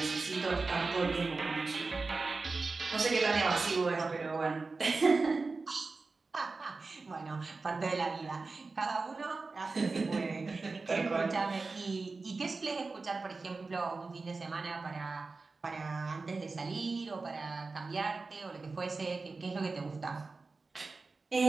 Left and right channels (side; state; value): left; quieter; 3.9 dB